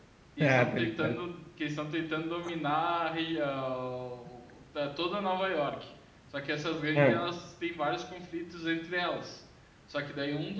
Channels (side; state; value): both; identical; correlation 1.00